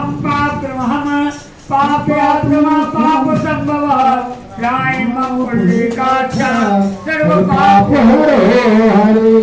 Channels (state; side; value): identical; both; correlation 1.00